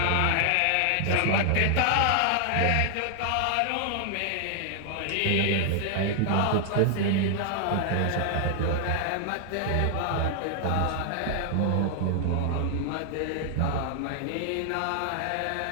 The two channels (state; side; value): different; both; correlation 0.00